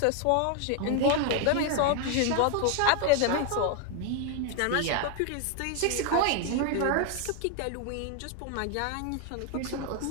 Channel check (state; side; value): different; both; correlation 0.01